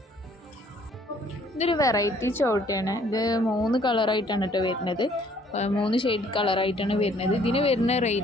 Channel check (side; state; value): both; normal; correlation 0.61